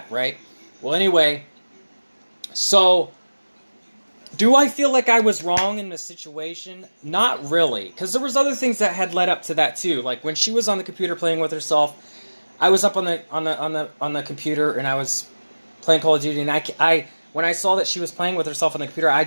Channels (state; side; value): inverted; both; correlation -1.00